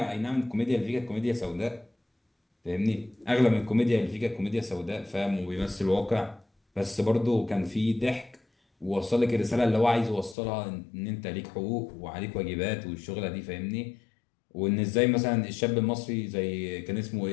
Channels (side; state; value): right; drops out; at 10.4 s